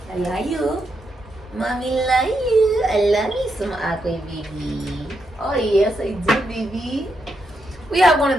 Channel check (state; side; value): normal; both; correlation 0.82